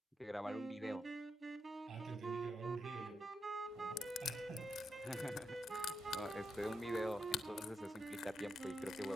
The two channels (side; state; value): both; normal; correlation 0.83